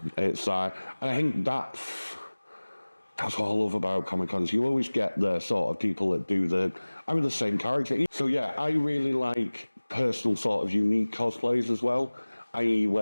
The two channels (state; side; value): inverted; both; correlation -1.00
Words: It's and I think that's what I love about Comic-Cons. You always get the sort of people that do the same character. So yeah, I really like personal sort of unique cosplays as well, i.e.